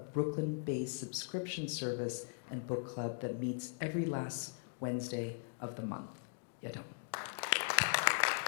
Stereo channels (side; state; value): right; silent; digital silence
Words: subscription service and book club that meets every last Wednesday of the month. Yadon.